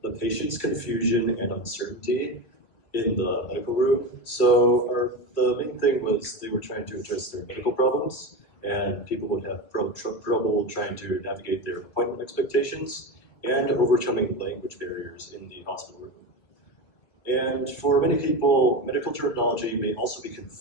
the patient's confusion and uncertainty in the medical room. So the main thing was they were trying to address their medical problems, and people would have trouble trying to navigate their appointment expectations and overcoming language barriers in the hospital room. And for many people, medical terminology may also be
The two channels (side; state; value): right; late; 2.2 ms